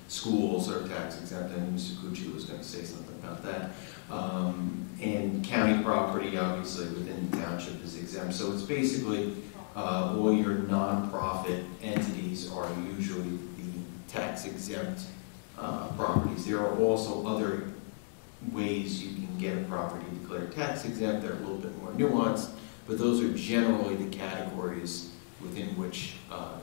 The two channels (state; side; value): silent; right; 55 dB below the other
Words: Schools are tax exempt, and Mr. Cucci was going to say something about that. And county property, obviously, within the township is exempt. So it's basically all your nonprofit entities are usually the tax exempt properties. There are also other ways you can get a property declared tax exempt that are a little bit more nuanced, but those are generally the categories within which